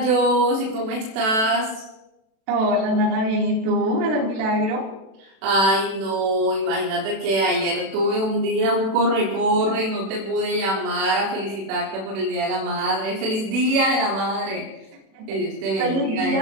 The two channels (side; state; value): left; late; 36 ms